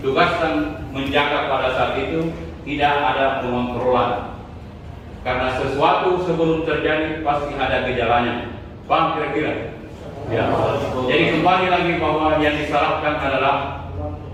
menjaga pada saat itu tidak ada pengontrolan. Karena sesuatu sebelum terjadi pasti ada gejalanya. Paham kira-kira? Ya. Jadi kembali lagi bahwa yang disalahkan adalah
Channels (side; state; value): both; identical; correlation 1.00